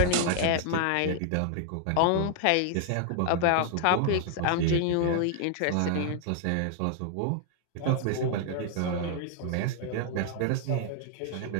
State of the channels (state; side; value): different; both; correlation 0.00